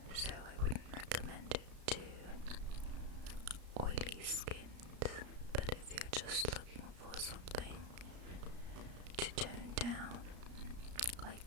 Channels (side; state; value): left; late; 33 ms